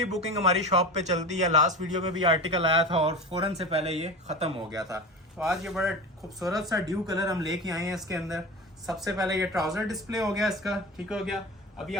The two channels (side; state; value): both; normal; correlation 0.29